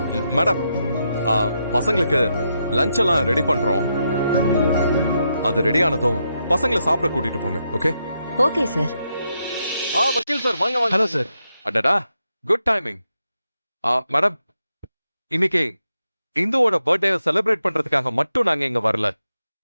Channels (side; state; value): both; inverted; correlation -0.83